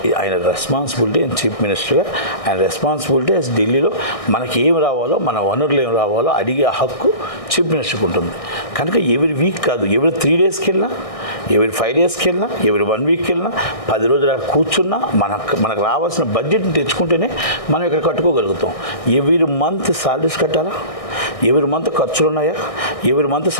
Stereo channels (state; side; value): late; right; 1.6 ms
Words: ఆయన రెస్పాన్సిబిలిటీ చీఫ్ మినిస్టర్గా, ఆయన రెస్పాన్సిబిలిటీ ఢిల్లీలో మనకి ఏం రావాలో, మన వనరులు ఏం రావాలో అడిగే హక్కు చీఫ్ మినిస్టర్కి ఉంటుంది. కనుక ఎవరి వీక్ కాదు, ఎవరి 3 daysకి వెళ్ళినా, ఎవరి 5 daysకి వెళ్ళినా, ఎవరి 1 weekకి వెళ్ళినా, 10 రోజులు అక్కడ కూర్చున్నా మనకు రావాల్సిన బడ్జెట్ని తెచ్చుకుంటేనే మనం ఇక్కడ కట్టుకోగలుగుతాం. ఎవరి మంత్ సాలరీస్ కట్టాలా, ఎవరి మంత్ ఖర్చులు ఉన్నాయా, ఎవరి మంత్